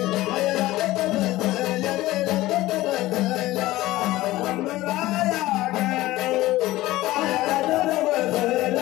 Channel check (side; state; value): right; quieter; 17.3 dB